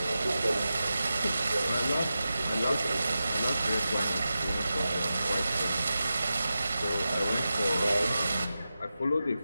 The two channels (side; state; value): both; inverted; correlation -0.92